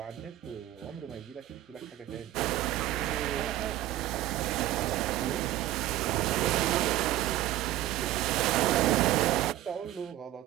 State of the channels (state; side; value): quieter; left; 14.4 dB